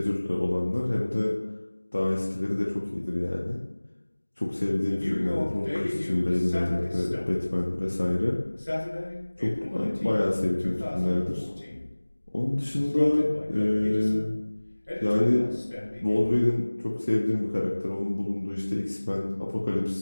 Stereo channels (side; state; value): both; inverted; correlation -1.00